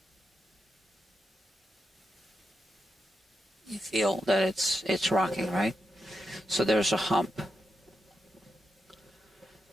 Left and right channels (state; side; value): normal; both; correlation 0.85